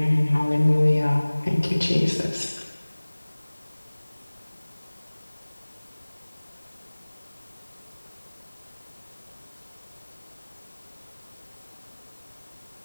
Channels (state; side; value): inverted; both; correlation -1.00